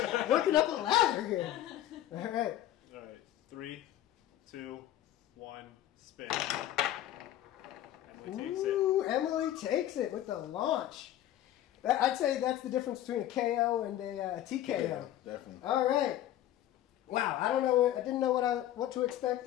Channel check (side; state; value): right; quieter; 12.8 dB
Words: Working up a ladder here. All right. All right. 3, 2, 1, spin. Emily takes it. Ooh, Emily takes it with the launch. I'd say that's the difference between a KO and a TKO. Yeah, definitely. All right. Wow, I don't know. I didn't know what to expect